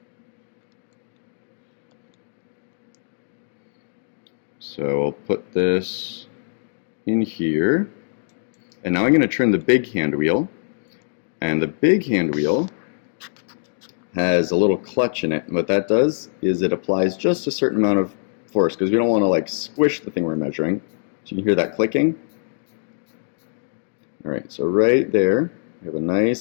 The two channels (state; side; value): silent; right; digital silence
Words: So I'll put this in here, and now I'm going to turn the big hand wheel, and the big hand wheel has a little clutch in it, and what that does is it applies just a certain amount of force, because we don't want to like squish the thing we're measuring. So you can hear that clicking. Alright, so right there, We have a